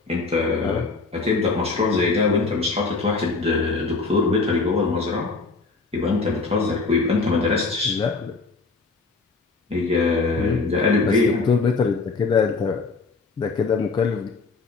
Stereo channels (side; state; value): right; quieter; 4.0 dB